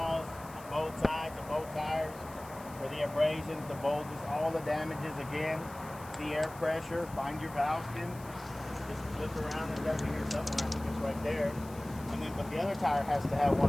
on both sides of both tires for the abrasions, the bulges, all the damages again. The air pressure, find your valve skins. Just flip around, it's got to be here somewhere. It's right there. And then, but the other tire has to have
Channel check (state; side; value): noise; left; hiss, 20 dB below the sound